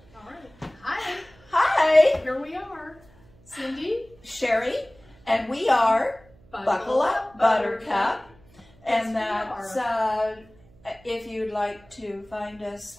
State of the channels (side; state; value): right; noise; hum, 27 dB below the sound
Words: right. Hi. Hi, Here we are. Cindy. Sherry, and we are Buckle Up Buttercup. And that's, if you'd like to find